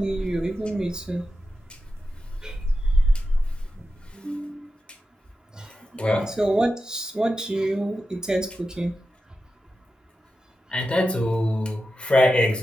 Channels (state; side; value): normal; both; correlation 0.91